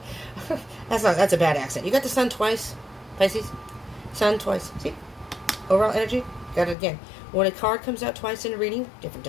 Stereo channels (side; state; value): right; drops out; at 6.8 s